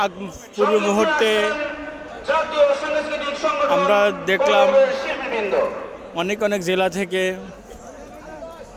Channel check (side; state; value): both; identical; correlation 1.00